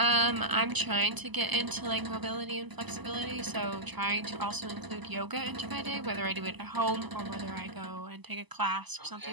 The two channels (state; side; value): late; left; 1.0 ms